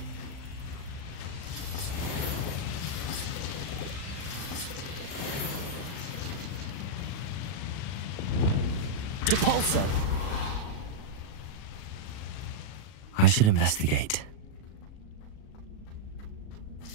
Depulso! I should investigate.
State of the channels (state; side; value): late; right; 37 ms